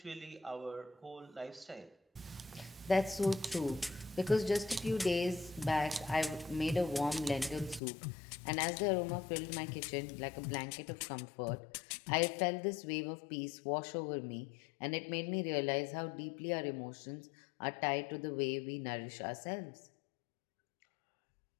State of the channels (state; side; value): drops out; right; at 7.8 s